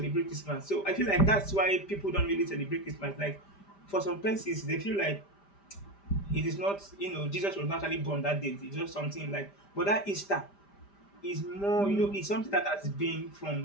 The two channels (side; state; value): right; late; 5.0 ms